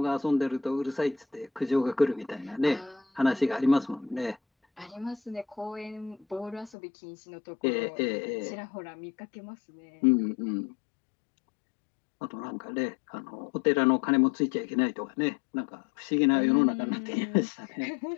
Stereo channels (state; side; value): drops out; right; at 6.7 s